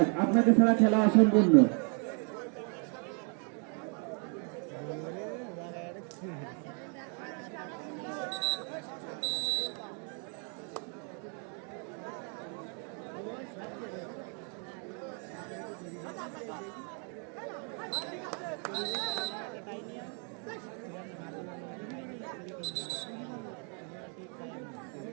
আপনাকে ছাড়া খেলা অসম্পূর্ণ।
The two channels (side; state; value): left; quieter; 39.7 dB